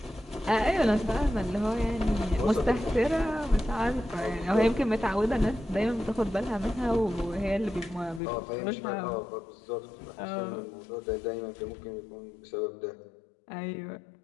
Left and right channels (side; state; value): right; drops out; at 8.2 s